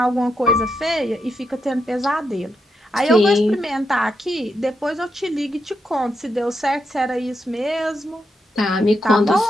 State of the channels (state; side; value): normal; both; correlation 0.83